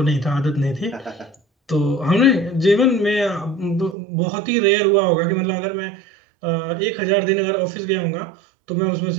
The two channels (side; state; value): left; drops out; at 4.0 s